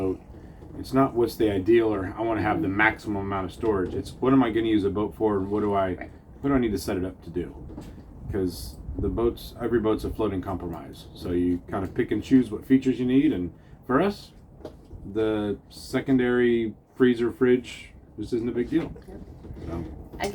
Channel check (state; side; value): identical; both; correlation 1.00